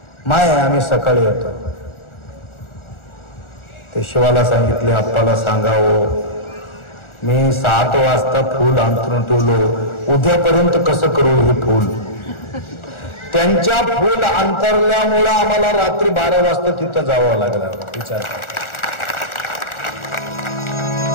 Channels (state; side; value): late; right; 1.4 ms